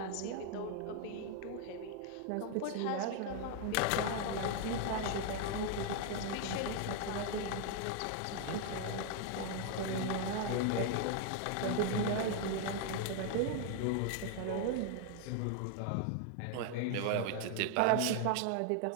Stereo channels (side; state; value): both; different; correlation 0.00